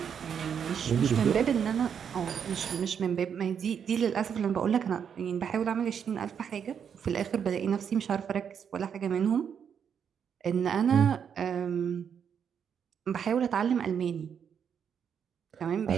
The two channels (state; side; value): quieter; left; 7.6 dB